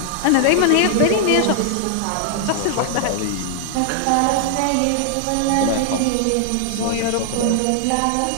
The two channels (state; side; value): different; both; correlation 0.00